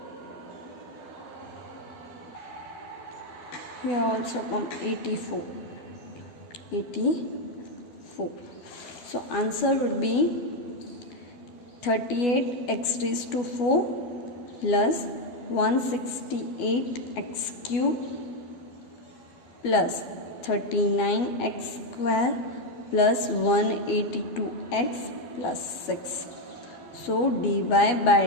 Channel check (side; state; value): right; late; 12 ms